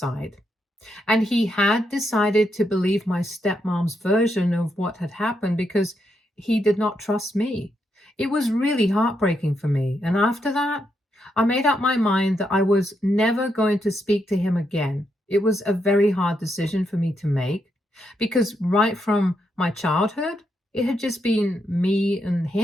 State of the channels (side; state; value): both; normal; correlation 0.80